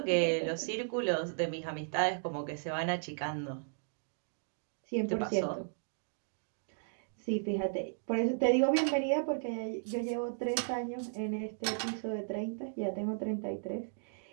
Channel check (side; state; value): left; silent; digital silence